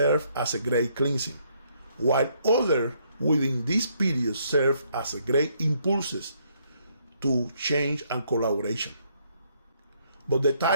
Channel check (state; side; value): inverted; both; correlation -0.70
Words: as a great cleansing, while others within this period serve as a great impulses to change and collaboration. But the